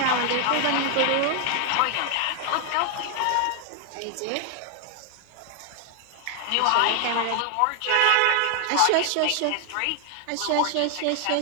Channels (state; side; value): different; both; correlation 0.00